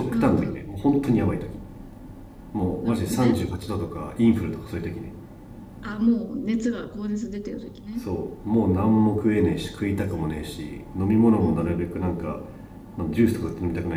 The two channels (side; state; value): both; identical; correlation 1.00